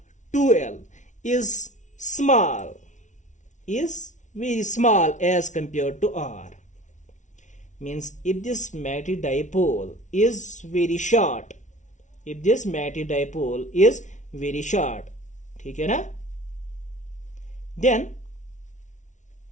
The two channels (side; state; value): right; late; 0.36 ms